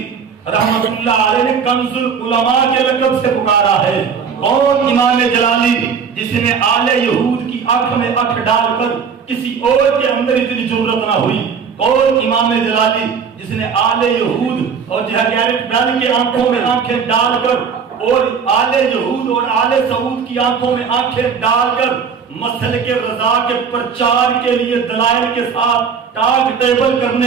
رحمت اللہ علیہ نے کنز العلماء کے لقب سے پکارا ہے؟ کون امام جلالی جس نے آل یہود کی آنکھ میں آنکھ ڈال کر کسی اور کے اندر اتنی جرأت نہ ہوئی؟ کون امام جلالی جس نے آل یہود اور گیرٹ بیل کی آنکھوں میں آنکھیں ڈال کر اور آل یہود اور آل سعود کی آنکھوں میں آنکھیں ڈال کر مسلک رضا کے پرچار کے لیے دلائل کے ساتھ ٹاک ٹیبل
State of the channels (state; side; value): quieter; left; 6.4 dB